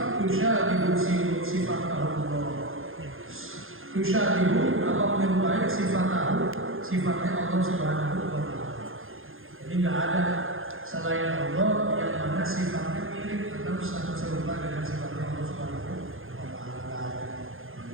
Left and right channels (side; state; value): left; late; 0.60 ms